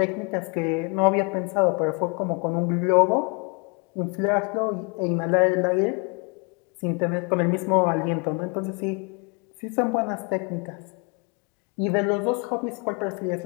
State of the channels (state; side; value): quieter; right; 33.9 dB